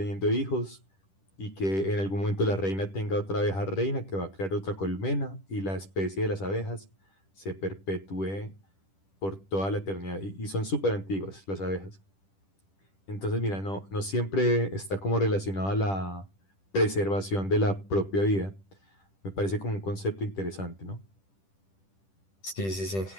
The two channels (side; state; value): right; late; 10 ms